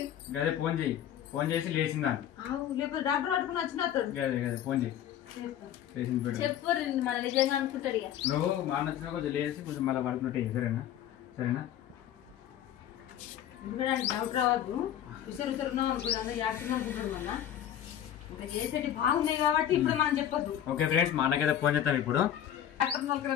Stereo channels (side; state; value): right; quieter; 10.6 dB